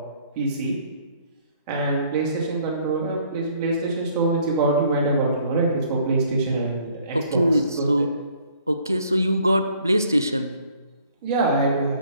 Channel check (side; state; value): both; inverted; correlation -0.61